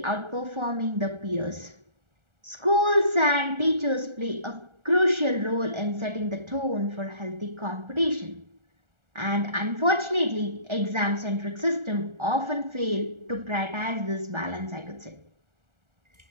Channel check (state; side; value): late; left; 1.4 ms